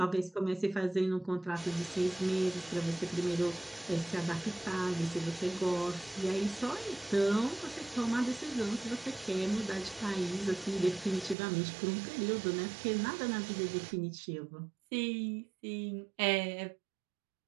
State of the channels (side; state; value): left; drops out; at 11.4 s